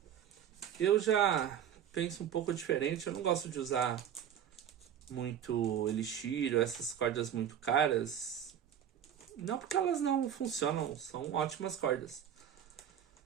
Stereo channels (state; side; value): quieter; left; 9.4 dB